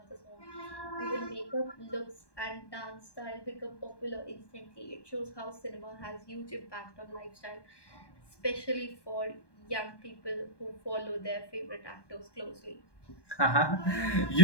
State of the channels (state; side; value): late; right; 1.2 ms